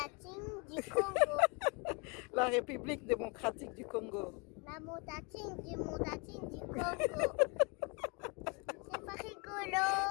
du Congo. La République démocratique du Congo. La démocratique du Congo. C'est pas rigolo.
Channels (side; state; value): right; quieter; 31.7 dB